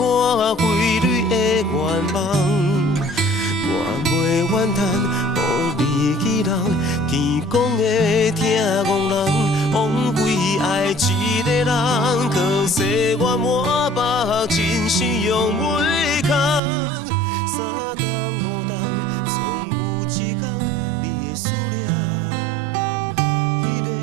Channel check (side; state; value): left; drops out; at 16.6 s